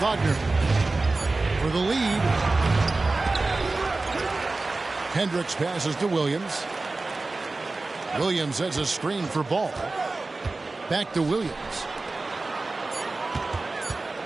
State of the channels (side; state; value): left; quieter; 3.4 dB